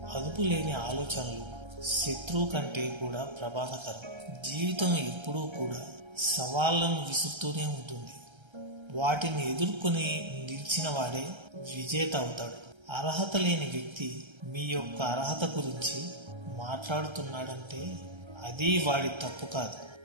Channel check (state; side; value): late; left; 1.3 ms